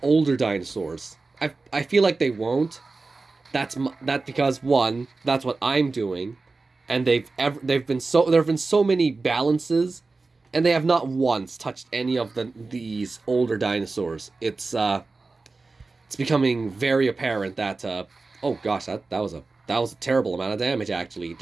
older dinosaurs? I feel like they won't. That's because, one, that's what I'm doing, and there have been so many balances, and they have not once touched any of these older dinosaurs. It's becoming very apparent that oh gosh, that was a terrible amount of damage. Actually, it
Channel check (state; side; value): quieter; left; 3.7 dB